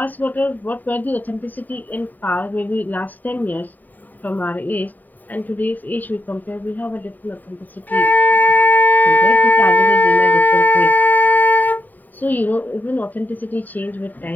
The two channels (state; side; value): late; right; 0.086 ms